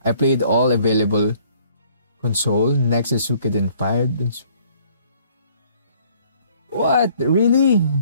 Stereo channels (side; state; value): both; inverted; correlation -0.60